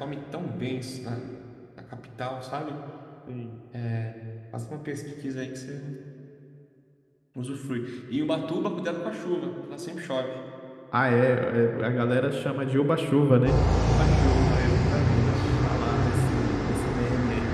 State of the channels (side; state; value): both; identical; correlation 1.00